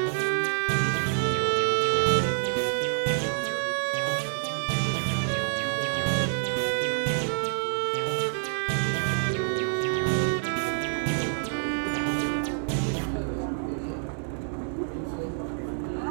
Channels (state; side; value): silent; left; digital silence